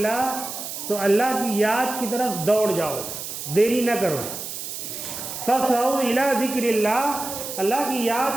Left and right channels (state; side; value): noise; right; hiss, 7 dB below the sound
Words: تو اللہ کی یاد کی طرف دوڑ جاؤ، دیری نہ کرو. فَاسْعَوْا إِلَى ذِكْرِ اللَّهِ، اللہ کی یاد